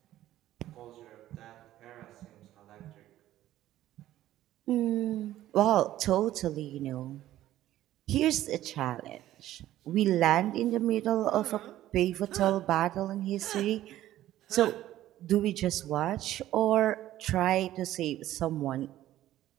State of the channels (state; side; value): quieter; left; 13.8 dB